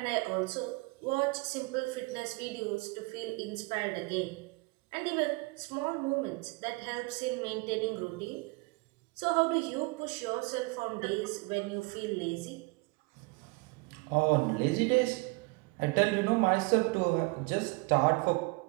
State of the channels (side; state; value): left; quieter; 26.9 dB